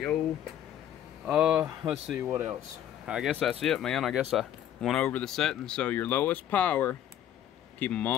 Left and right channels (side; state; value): right; quieter; 10.8 dB